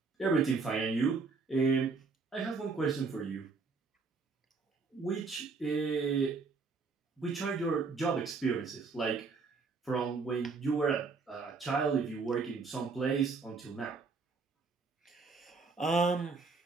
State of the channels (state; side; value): quieter; left; 4.5 dB